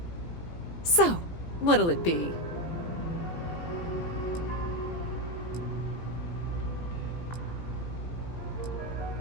So, what'll it be?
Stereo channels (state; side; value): late; right; 18 ms